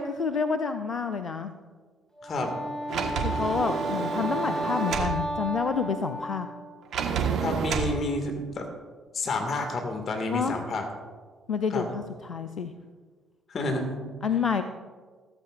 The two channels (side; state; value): both; normal; correlation 0.59